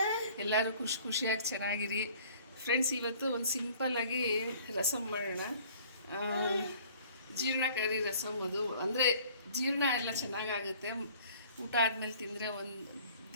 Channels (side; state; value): both; inverted; correlation -0.52